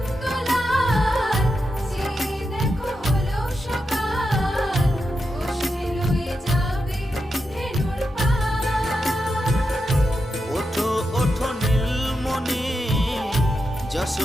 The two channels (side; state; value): both; normal; correlation 0.87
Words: চেয়ে দেখো হলো সকাল, কষ্টে লয়ে যাবে ধেনুর পার। ওঠো ওঠো নীলমণি,